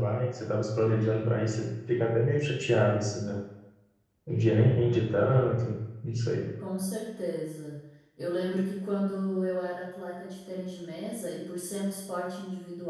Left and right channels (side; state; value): both; identical; correlation 1.00